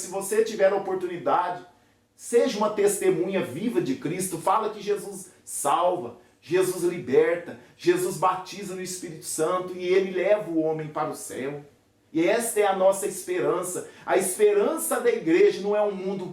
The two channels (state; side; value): identical; both; correlation 1.00